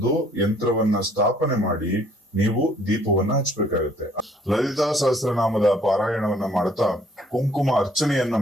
ಯಂತ್ರವನ್ನ ಸ್ಥಾಪನೆ ಮಾಡಿ ನೀವು ದೀಪವನ್ನ ಹಚ್ಚಬೇಕಾಗುತ್ತೆ. ಲಲಿತಾ ಸಹಸ್ರನಾಮದ ಪಾರಾಯಣವನ್ನ ಮಾಡ್ತಾ ಕುಂಕುಮ ಅರ್ಚನೆಯನ್ನ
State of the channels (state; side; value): normal; both; correlation 0.61